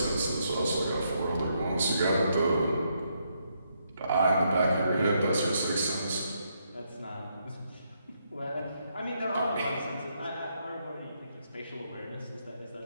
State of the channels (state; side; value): inverted; both; correlation -0.77